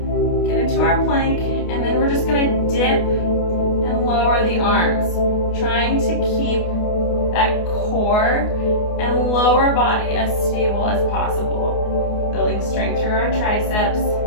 get into our plank, and then we're just going to dip and lower the arms, trying to keep that core and lower body as stable as possible. Building strength through our triceps.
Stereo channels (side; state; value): right; late; 28 ms